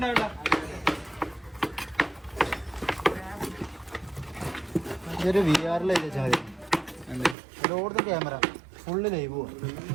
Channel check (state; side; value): drops out; left; at 7.4 s